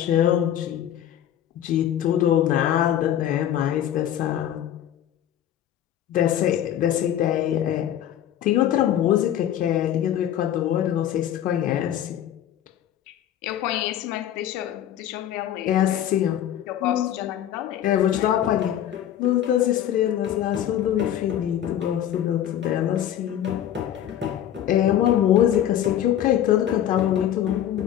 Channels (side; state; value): right; quieter; 11.0 dB